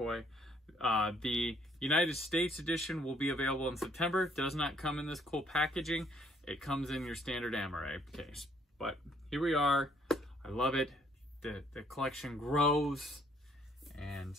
The United States edition will be available in September. Does not come in this cool packaging. It comes in your standard Amaray case. But here we are. I love it. The collection grows, and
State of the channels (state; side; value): normal; both; correlation 0.66